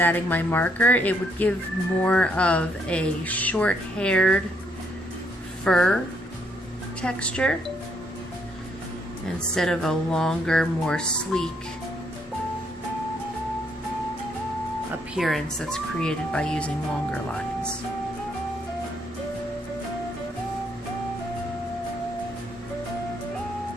my marker, it would give more of a short-haired fur texture instead of a longer, more sleek appearance that's created by using longer lines.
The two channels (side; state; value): both; normal; correlation 0.72